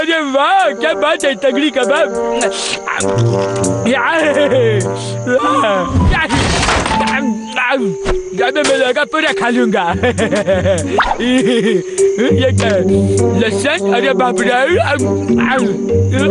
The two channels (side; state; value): both; identical; correlation 1.00